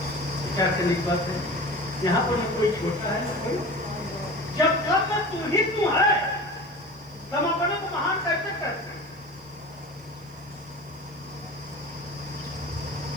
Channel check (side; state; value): right; noise; hiss, 28 dB below the sound